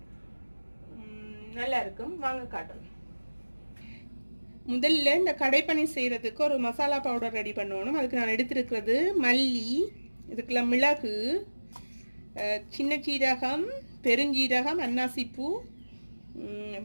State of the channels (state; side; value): inverted; both; correlation -1.00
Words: நல்லா இருக்கும். வாங்க காட்டுறேன். முதல்ல இந்த கடை பன்னீர் செய்கிறதுக்கு ஒரு மசாலா பவுடர் ரெடி பண்ணணும். அதுக்கு நான் எடுத்துருக்கிறது மல்லி, இதுக்குள்ள மிளகு, சின்ன சீரகம், பெருஞ்சீரகம், அன்னாசிப்பூ,